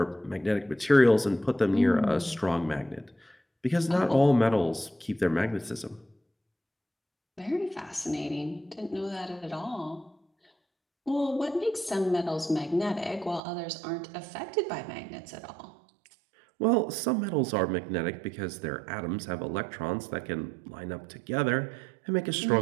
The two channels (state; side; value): drops out; left; at 13.4 s